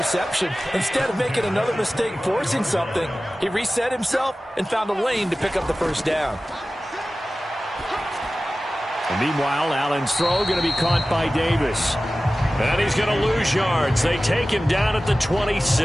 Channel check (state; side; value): normal; both; correlation 0.96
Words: Instead of making another mistake forcing something, he reset himself and found a lane to pick up the first down. And meanwhile, Allen's throw going to be caught by Davis. And he's going to lose yards. They take him down at the